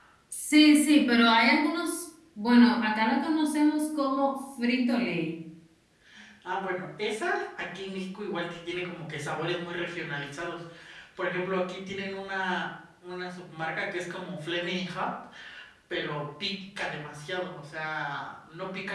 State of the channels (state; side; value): identical; both; correlation 1.00